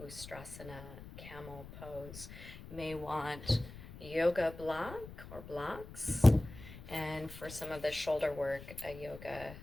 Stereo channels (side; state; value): left; noise; rumble, 14 dB below the sound